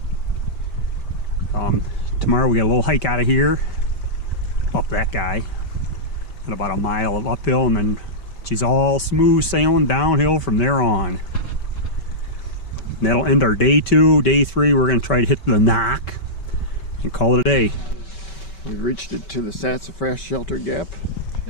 Tomorrow we got a little hike out of here, up that guy, and about a mile of uphill, and then she's all smooth sailing downhill from there on. And that'll end our day 2. Day 3, we're going to try to hit the Knock and call it a day. We've reached it to the Sassafras Shelter Gap.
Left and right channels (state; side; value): late; right; 5.2 ms